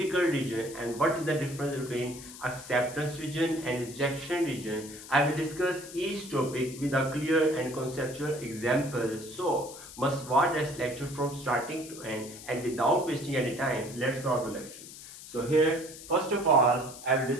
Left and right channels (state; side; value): noise; left; hiss, 15 dB below the sound